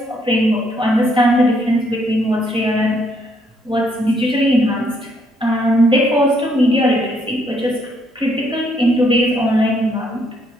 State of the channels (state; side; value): normal; both; correlation 0.71